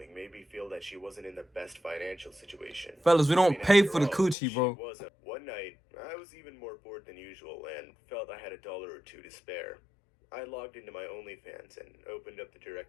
made me feel that she wasn't in the best financial situation. Fellas, we I don't mean, pay after for the all, coochie, bro. She wasn't. One night, I was even more bored than usual and felt I had $1 or $2 to spare. I logged into my OnlyFans and opened up the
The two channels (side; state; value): right; drops out; at 4.4 s